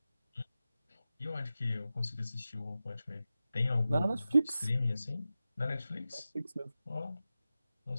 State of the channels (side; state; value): both; inverted; correlation -0.93